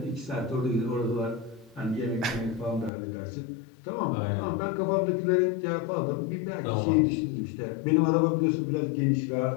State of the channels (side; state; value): right; drops out; at 2.9 s